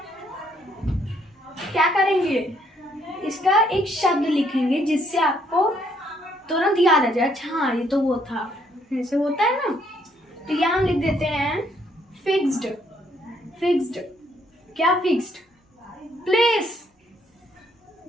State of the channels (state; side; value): normal; both; correlation 0.69